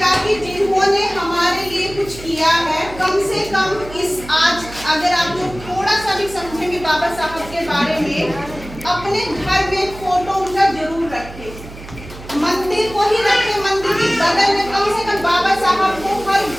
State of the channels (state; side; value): noise; right; hum, 15 dB below the sound